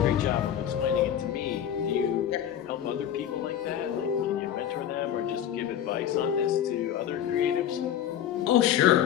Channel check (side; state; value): right; quieter; 10.2 dB